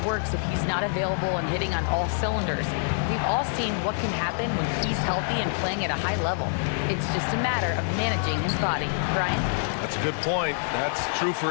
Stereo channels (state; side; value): silent; right; 60 dB below the other